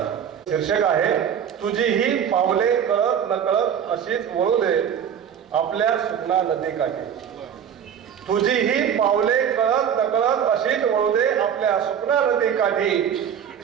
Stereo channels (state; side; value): quieter; left; 8.4 dB